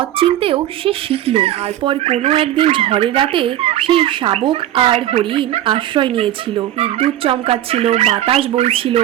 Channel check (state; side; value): quieter; left; 13.0 dB